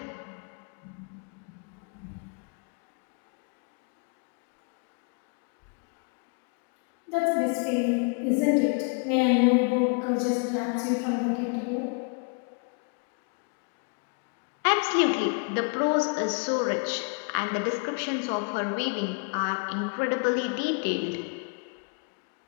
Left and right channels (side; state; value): right; quieter; 37.3 dB